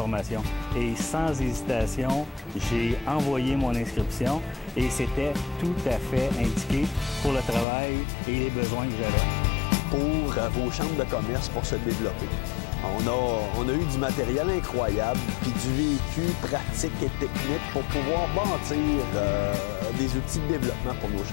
et sans hésitation, j'ai envoyé mon inscription et c'était tout à fait indiqué pour le travail et les besoins que j'avais. Pour vos chambres de commerce pour se développer. On a eu du matériel incroyable, puis du vécu pratique et technique pour pouvoir bâtir des outils de développement pour nos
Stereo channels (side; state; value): right; drops out; at 7.7 s